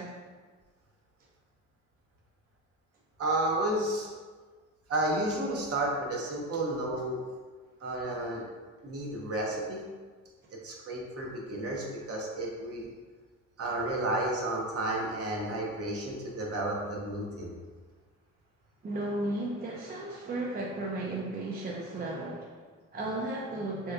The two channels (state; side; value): normal; both; correlation 0.19